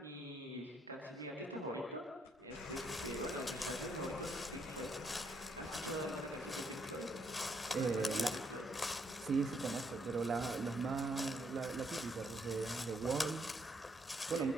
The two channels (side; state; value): both; normal; correlation 0.73